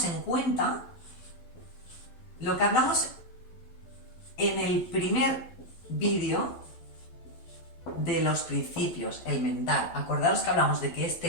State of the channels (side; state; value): right; late; 12 ms